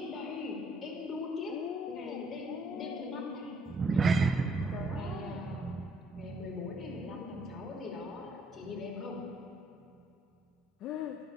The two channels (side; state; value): both; normal; correlation 0.66